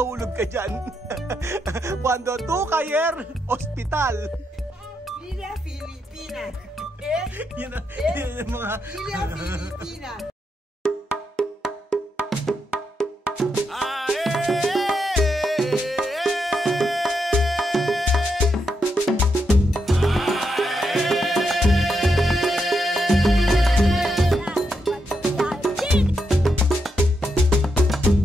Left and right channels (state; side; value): normal; both; correlation 0.82